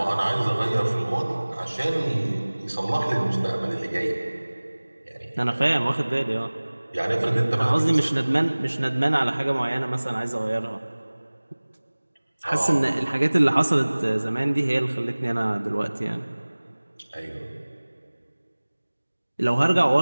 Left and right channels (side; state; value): both; inverted; correlation -1.00